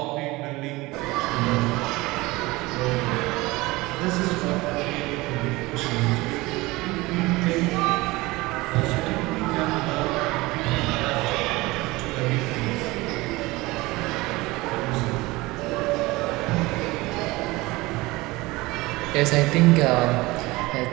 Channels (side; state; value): left; quieter; 21.2 dB